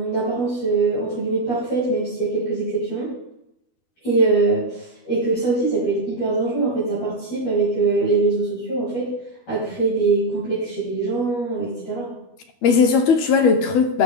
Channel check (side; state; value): right; late; 12 ms